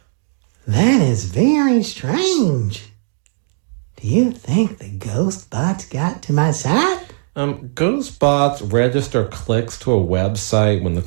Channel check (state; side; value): silent; left; digital silence